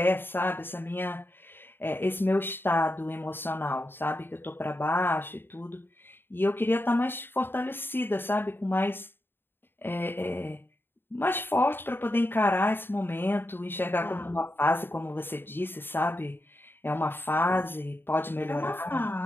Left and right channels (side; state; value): right; late; 0.10 ms